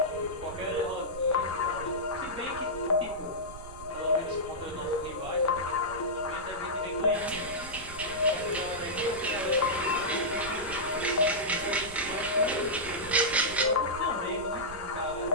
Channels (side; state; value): right; noise; rumble, 15 dB below the sound